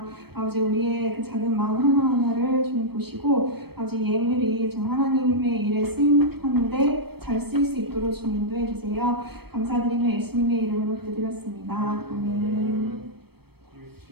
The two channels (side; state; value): left; late; 0.96 ms